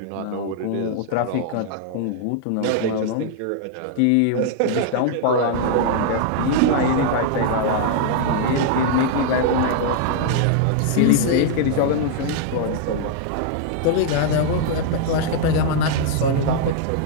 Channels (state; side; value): different; both; correlation -0.01